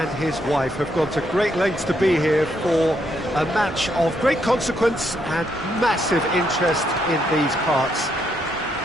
his wife have gone to great lengths to be here for a match of great consequence and massive interest in these parts.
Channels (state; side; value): normal; both; correlation 0.76